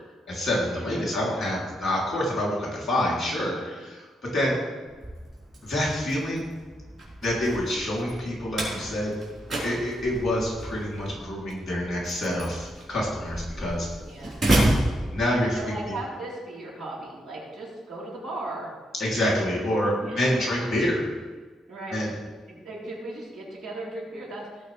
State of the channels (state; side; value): normal; both; correlation 0.79